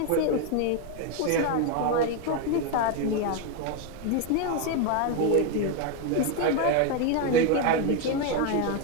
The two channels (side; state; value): both; different; correlation 0.02